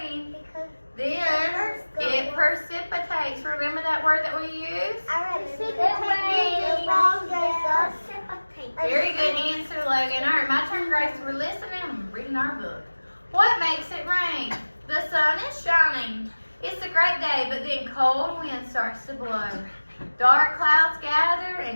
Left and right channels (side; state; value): both; inverted; correlation -1.00